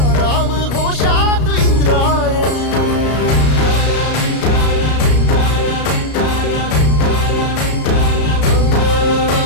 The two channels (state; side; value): late; right; 33 ms